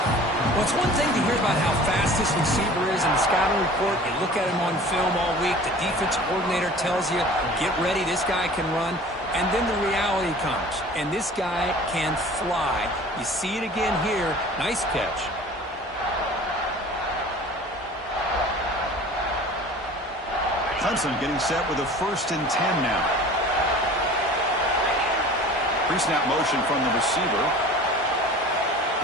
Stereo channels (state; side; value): normal; both; correlation 0.43